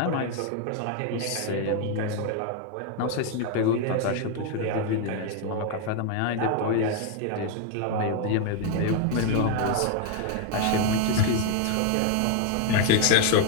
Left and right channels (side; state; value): both; different; correlation 0.01